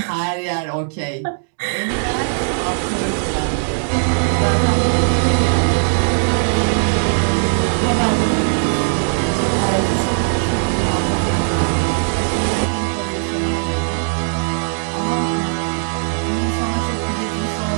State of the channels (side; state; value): left; silent; 67 dB below the other